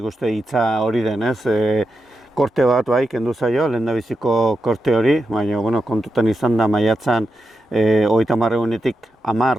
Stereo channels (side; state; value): both; normal; correlation 0.88